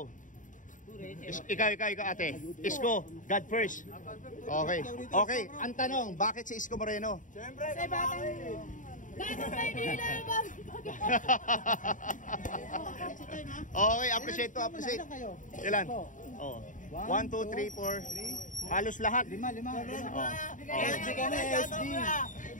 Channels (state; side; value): late; right; 0.37 ms